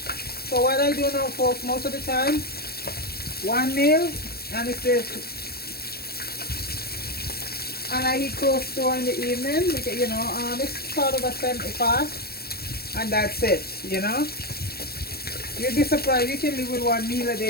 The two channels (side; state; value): right; late; 0.45 ms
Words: So what I do now, folks, most of the time, 1 meal, and it's this. And I eat close to in the evening, because, you know, it's sort of a 70 fast, and that's it, you know. You'd be surprised, you can live with 1 meal a